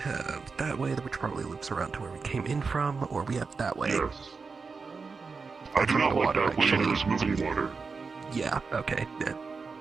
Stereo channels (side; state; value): left; quieter; 4.7 dB